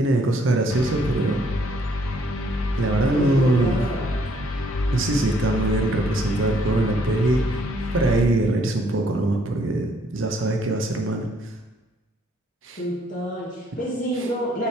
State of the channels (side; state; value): both; normal; correlation 0.66